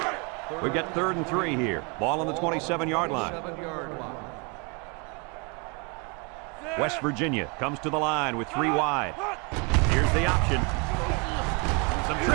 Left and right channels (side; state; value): left; quieter; 31.7 dB